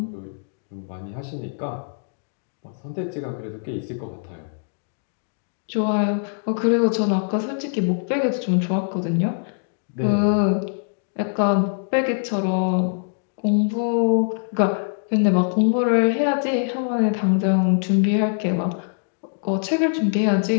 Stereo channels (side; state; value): right; silent; digital silence